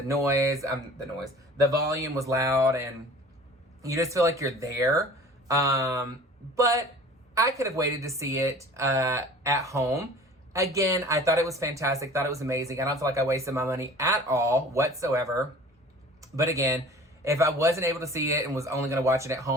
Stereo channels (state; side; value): normal; both; correlation 0.44